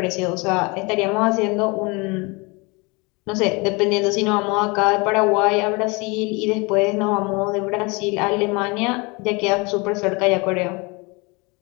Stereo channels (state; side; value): quieter; right; 27.8 dB